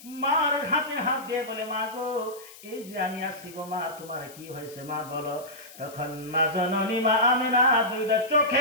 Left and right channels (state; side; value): noise; left; hiss, 19 dB below the sound